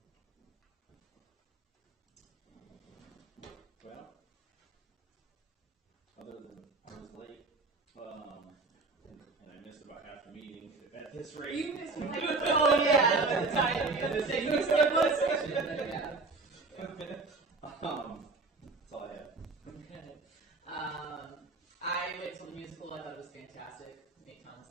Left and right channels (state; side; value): quieter; left; 3.7 dB